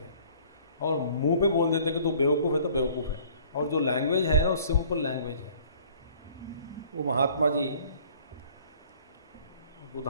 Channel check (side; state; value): both; inverted; correlation -0.54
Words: और मुंह पे बोल देते कि तू बेवकूफ़ है तो बेवकूफ़ है, और जो लैंग्वेज है वो सिंपल लैंग्वेज है। वो महात्मा जी